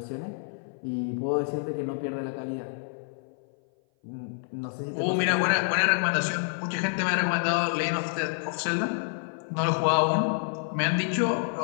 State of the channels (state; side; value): silent; right; 56 dB below the other